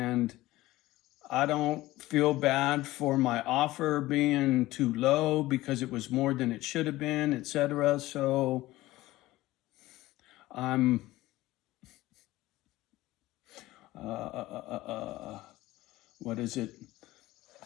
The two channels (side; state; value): right; quieter; 17.5 dB